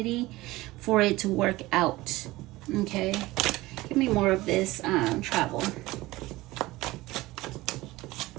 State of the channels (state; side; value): quieter; left; 19.1 dB